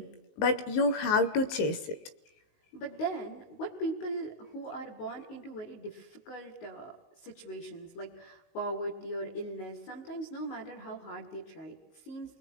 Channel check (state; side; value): late; right; 19 ms